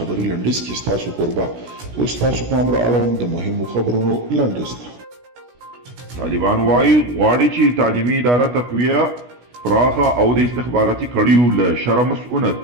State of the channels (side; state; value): left; late; 16 ms